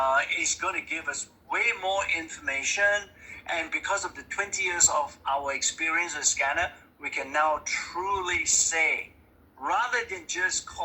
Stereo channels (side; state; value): both; identical; correlation 1.00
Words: it's going to give us way more information. And because of the 20 years of our experience with scanner, we can now truly say, rather than just